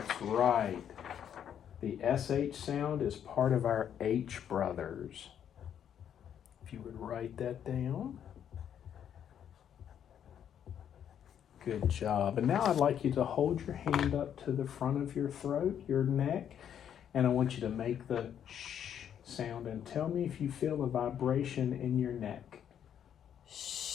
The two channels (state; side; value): quieter; right; 9.2 dB